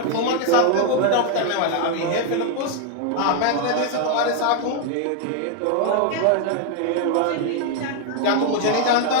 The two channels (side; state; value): both; different; correlation 0.00